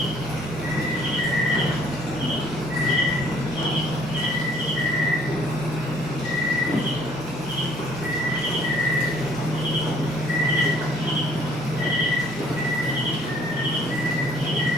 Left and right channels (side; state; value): both; normal; correlation 0.59